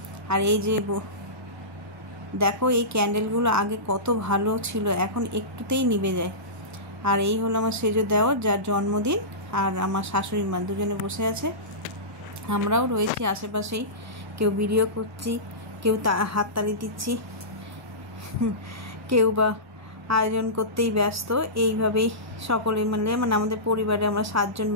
আর এই যে দেখো এই ক্যান্ডেলগুলো আগে কত ভালো ছিল, এখন একটুতেই নিভে যায়। আর এই হলো আমার সেজো দেওয়ার, যার জন্মদিন, আর আমার শাশুড়ি মা দুজনে বসে আছে। আমরাও রয়েছি আশেপাশেই, কেউ ভিডিও করছি, কেউ হাততালি দিচ্ছি, কেউ বা আয়োজন করতেই ব্যস্ত। এইভাবেই সকলে মিলে, মানে আমাদের পরিবারে আমরা 7 জন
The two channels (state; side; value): normal; both; correlation -0.20